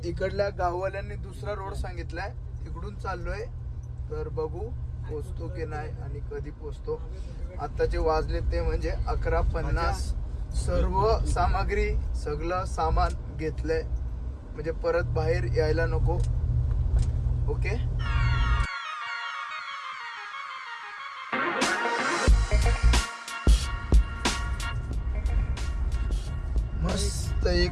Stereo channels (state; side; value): identical; both; correlation 1.00